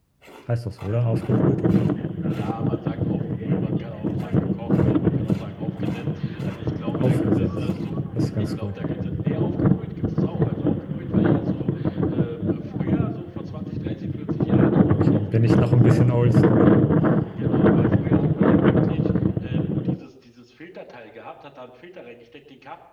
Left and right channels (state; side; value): identical; both; correlation 1.00